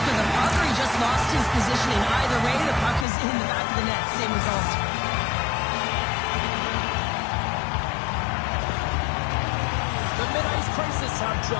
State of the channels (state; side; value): drops out; right; at 3.1 s